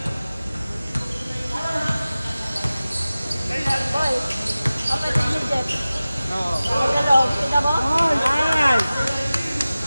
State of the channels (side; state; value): both; inverted; correlation -0.97